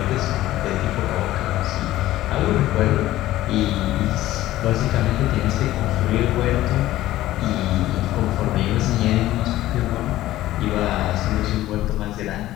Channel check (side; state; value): right; quieter; 15.1 dB